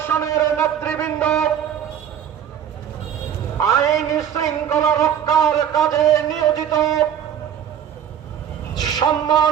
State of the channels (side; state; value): left; quieter; 9.4 dB